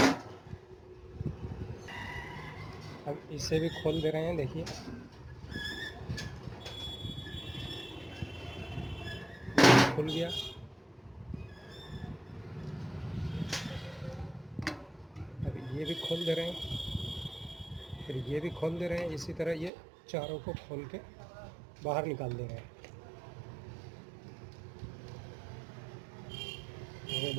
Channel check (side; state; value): left; drops out; at 19.7 s